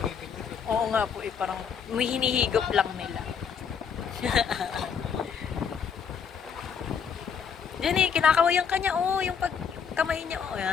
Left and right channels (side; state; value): right; quieter; 6.9 dB